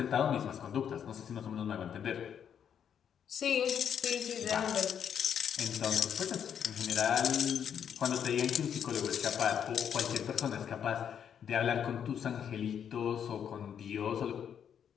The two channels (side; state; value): right; quieter; 8.4 dB